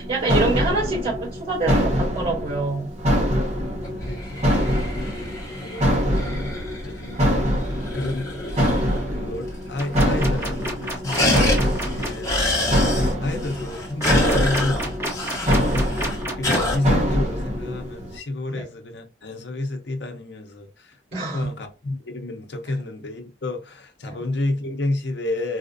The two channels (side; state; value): both; normal; correlation 0.61